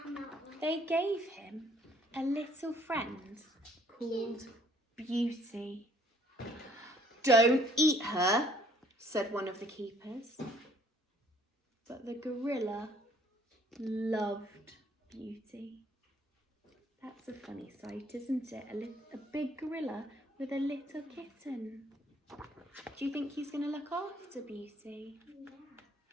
They gave him a little friend called Beauty. Don't eat her, said one of the keepers. But the gorilla loved Beauty. That's a funny sight, isn't it? A big gorilla with a little kitten. Do you think he's going to look after Beauty? Yeah.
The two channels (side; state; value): both; normal; correlation 0.60